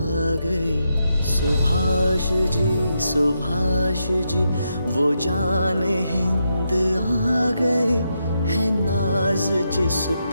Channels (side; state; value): both; inverted; correlation -0.83